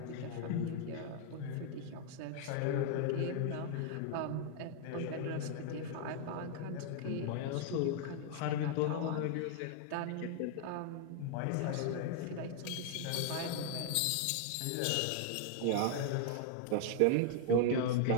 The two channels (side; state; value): both; different; correlation 0.00